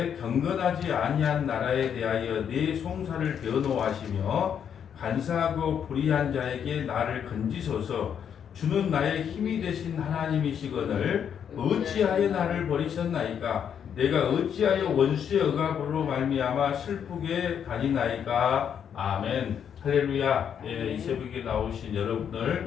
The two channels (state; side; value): quieter; right; 8.3 dB